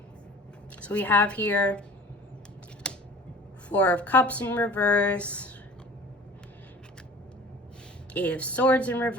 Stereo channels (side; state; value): both; normal; correlation 0.43